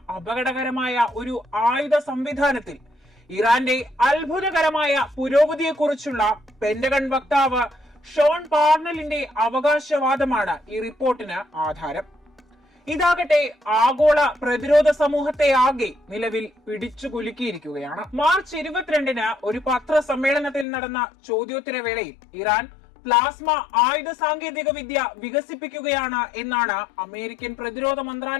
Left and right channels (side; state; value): right; drops out; at 20.7 s